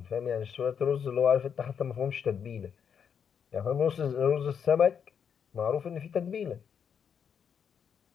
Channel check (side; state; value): right; quieter; 7.4 dB